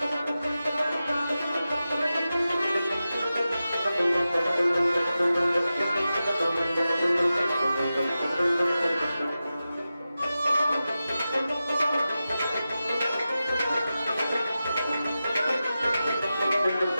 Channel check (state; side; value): inverted; both; correlation -0.93